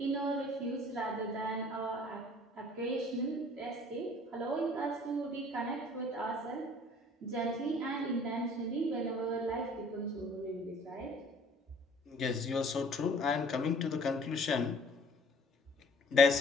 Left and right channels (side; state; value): both; normal; correlation 0.53